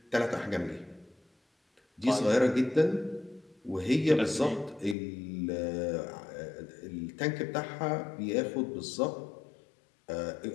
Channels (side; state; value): right; drops out; at 5.0 s